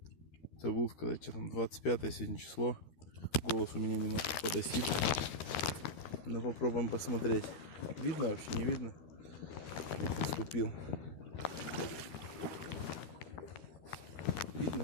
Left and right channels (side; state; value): right; late; 13 ms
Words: Забыл сказать, что там 25 сегодня число. Голос у меня немножко подосит. Но попробуем посмотреть. Видно вообще, не видно? Наступил.